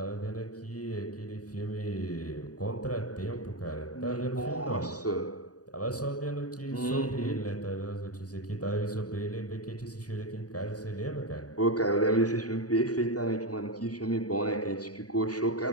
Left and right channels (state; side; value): late; right; 0.68 ms